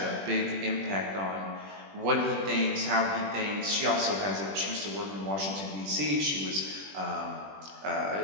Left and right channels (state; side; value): late; left; 21 ms